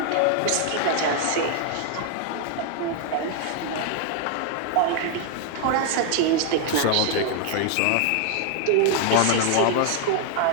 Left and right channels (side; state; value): both; different; correlation 0.00